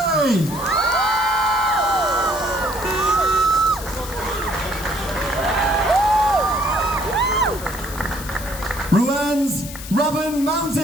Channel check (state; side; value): noise; left; hiss, 12 dB below the sound